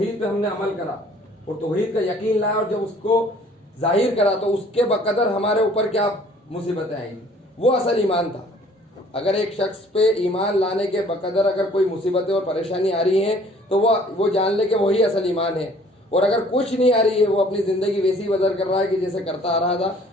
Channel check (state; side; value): normal; both; correlation 0.55